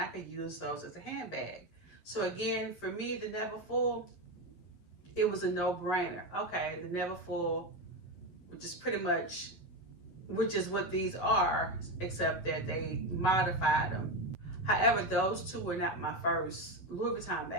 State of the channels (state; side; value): late; right; 11 ms